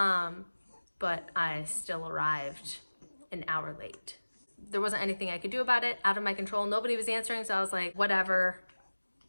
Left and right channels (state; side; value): inverted; both; correlation -1.00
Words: I still arrived an hour late. There wasn't anything I could do about it, out of my control. Nobody was answering, so I was like, whatever,